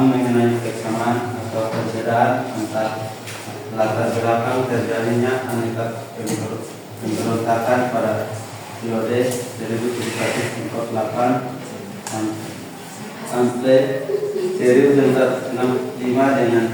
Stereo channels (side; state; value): both; identical; correlation 1.00